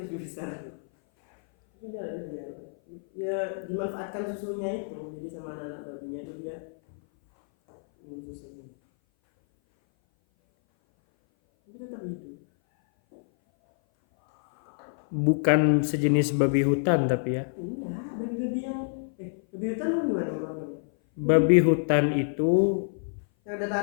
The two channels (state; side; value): silent; right; 57 dB below the other